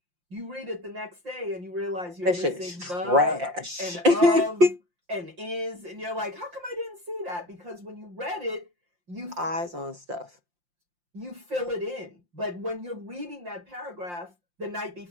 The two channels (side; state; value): left; late; 5.7 ms